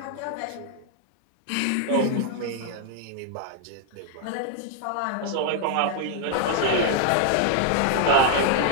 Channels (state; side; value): different; both; correlation 0.00